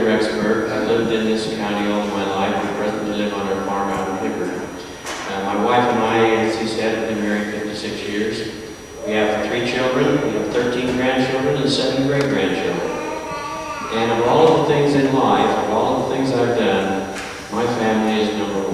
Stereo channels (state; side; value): identical; both; correlation 1.00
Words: Rexburg. I've lived in this county all my life. I presently live on our farm out in Hibbert. My wife and I, as he said, have been married 56 years. We have 3 children. We have 13 grandchildren and 7 great-grandchildren. And of all of the things in life, of all of the things I've done, my family is number